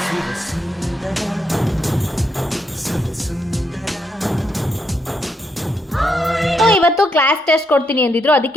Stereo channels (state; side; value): normal; both; correlation 0.78